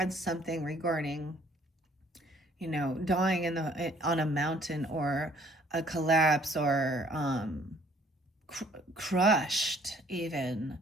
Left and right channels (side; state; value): both; normal; correlation 0.60